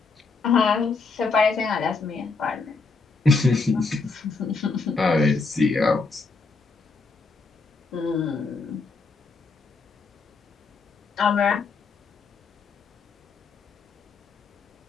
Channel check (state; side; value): quieter; right; 4.3 dB